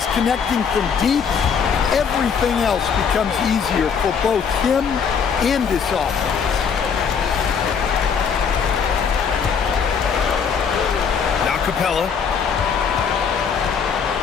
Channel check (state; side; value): quieter; right; 6.6 dB